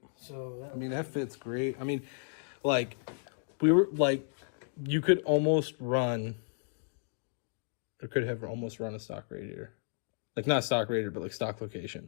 So that I mean, that fits great. I mean, like, you could almost run, or could have almost run a stock radiator. Like, not stock radiator, but like stock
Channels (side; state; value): right; silent; digital silence